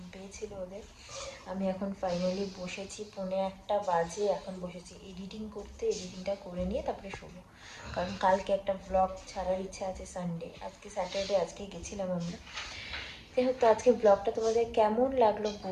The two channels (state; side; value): identical; both; correlation 1.00